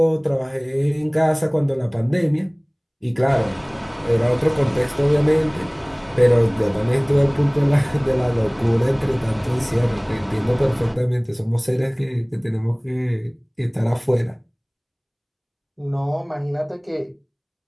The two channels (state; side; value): identical; both; correlation 1.00